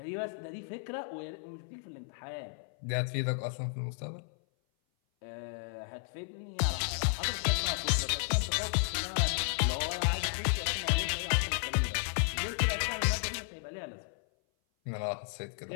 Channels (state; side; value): silent; right; 55 dB below the other